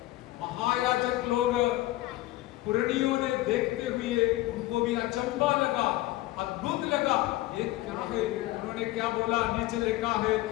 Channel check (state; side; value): quieter; right; 17.1 dB